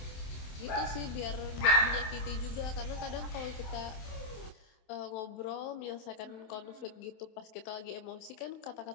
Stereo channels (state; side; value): late; right; 27 ms